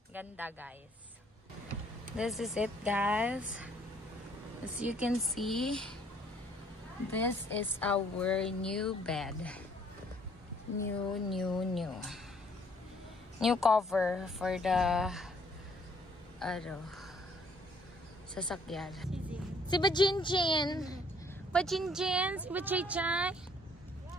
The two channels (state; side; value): normal; both; correlation 0.63